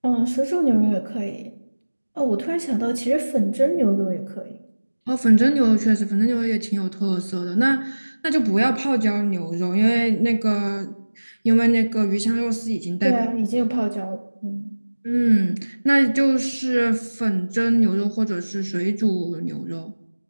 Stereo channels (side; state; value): both; inverted; correlation -1.00